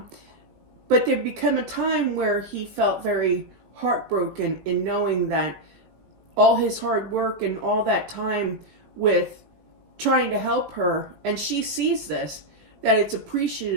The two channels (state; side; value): late; left; 18 ms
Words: But there became a time where he felt very heartbroken in knowing that all his hard work and all that time with trying to help her, and she sees this, that it's